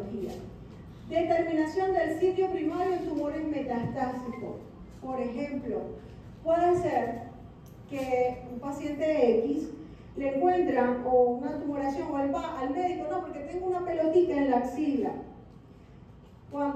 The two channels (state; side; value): identical; both; correlation 1.00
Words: Determinación del sitio primario en tumores metastásicos. Por ejemplo, puede ser que un paciente X le encuentran o una tumoración o él va al médico, no, porque tengo una pelotita en la axila.